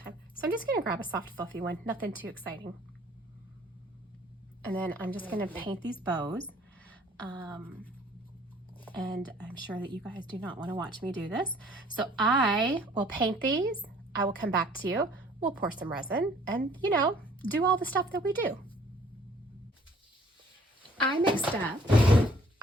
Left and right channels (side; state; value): both; normal; correlation 0.57